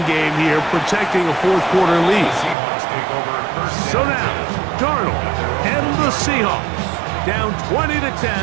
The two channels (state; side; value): drops out; left; at 2.6 s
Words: game here, protecting a 4th-quarter lead. So now, Darnold and the Seahawks down